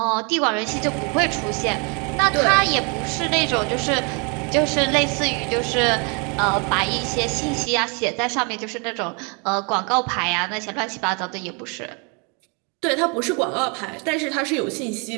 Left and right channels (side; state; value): left; quieter; 33.6 dB